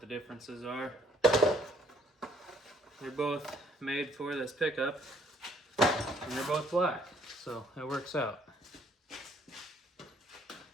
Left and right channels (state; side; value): normal; both; correlation 0.63